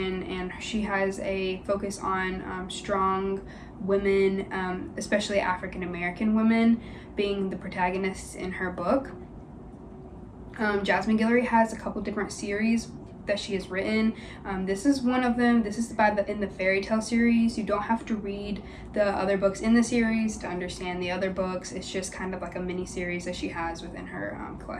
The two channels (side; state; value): both; identical; correlation 1.00